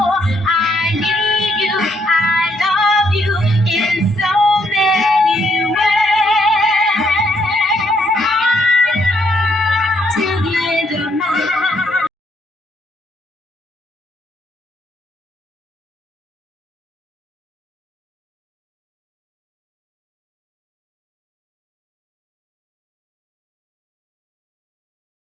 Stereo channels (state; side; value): normal; both; correlation 0.72